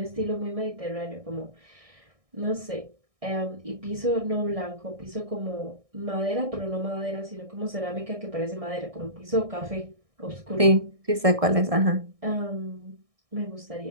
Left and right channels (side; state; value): left; late; 1.6 ms